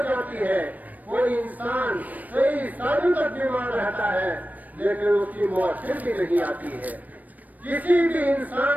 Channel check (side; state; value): left; late; 0.080 ms